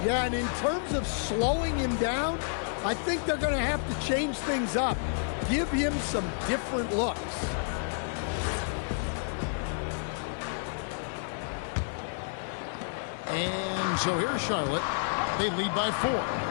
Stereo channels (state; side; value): silent; right; digital silence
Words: Yeah, and in terms of slowing him down, I think they're going to have to change things up. Give him some different looks. And so here's Charlotte. They lead by 4.